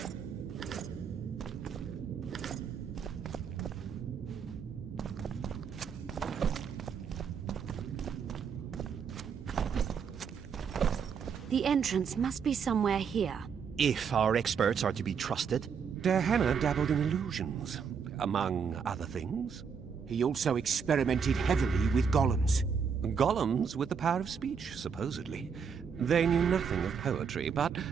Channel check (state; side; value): quieter; left; 6.5 dB